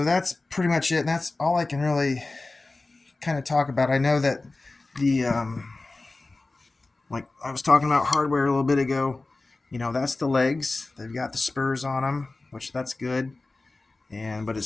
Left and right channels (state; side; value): quieter; right; 3.3 dB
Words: that's pretty much it, and that's all I can really kind of talk about. I know that the like I was talking about hardware a little bit ago. That's the legs. They've got the spurs on them, which that's good. But